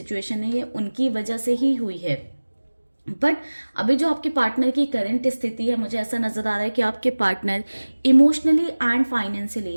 है ये उनकी वजह से ही हुई है, बट अभी जो आपके पार्टनर की करंट स्थिति है, मुझे ऐसा नजर आ रहा है कि आपके पार्टनर इमोशनली एंड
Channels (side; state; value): both; inverted; correlation -1.00